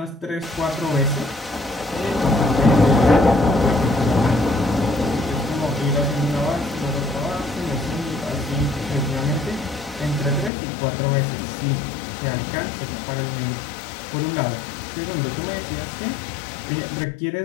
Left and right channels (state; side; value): drops out; right; at 10.5 s